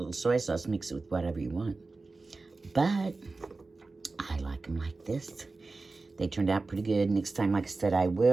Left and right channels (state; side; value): quieter; left; 3.6 dB